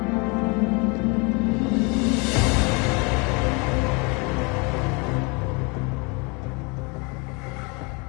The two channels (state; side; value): quieter; right; 30.5 dB